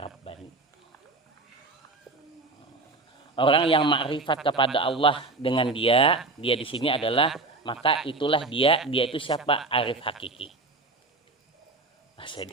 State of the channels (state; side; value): quieter; left; 3.4 dB